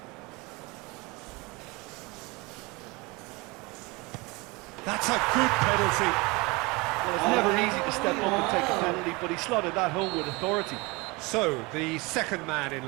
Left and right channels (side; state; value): left; quieter; 25.4 dB